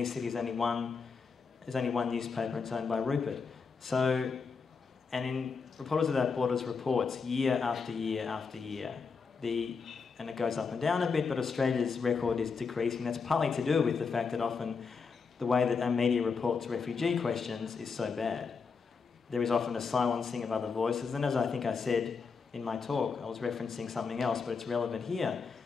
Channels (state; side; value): quieter; right; 5.2 dB